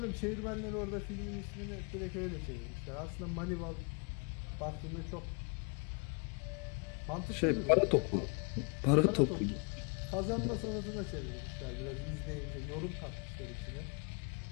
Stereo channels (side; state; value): right; quieter; 34.3 dB